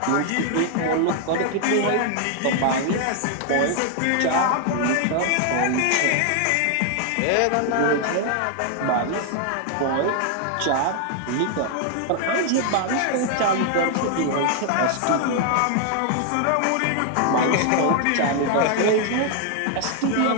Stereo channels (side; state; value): both; different; correlation 0.00